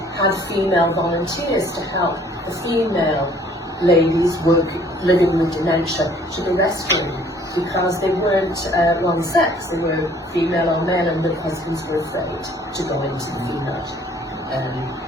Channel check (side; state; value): both; normal; correlation 0.57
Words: had female volunteers to help the female ladies living with dementia to the restroom, because they weren't wrong sex, they were female or male, and their husbands were afraid to go into the female